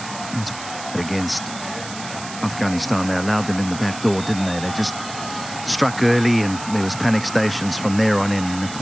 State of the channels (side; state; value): right; noise; hiss, 12 dB below the sound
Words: Against Afghanistan, they allowed them in the back door, didn't they? They just struck early and there was panic stations from there on in.